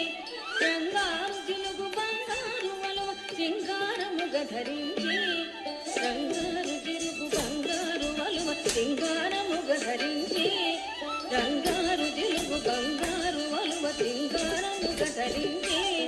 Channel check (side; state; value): both; identical; correlation 1.00